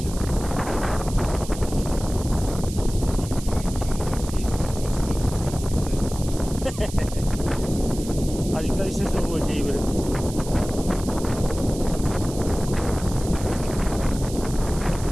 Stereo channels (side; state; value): right; noise; hiss, 13 dB below the sound